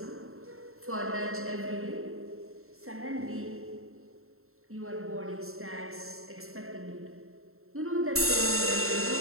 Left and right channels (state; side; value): late; left; 0.62 ms